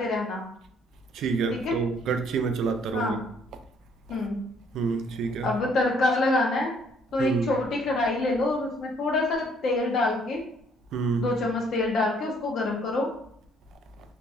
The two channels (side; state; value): both; normal; correlation 0.64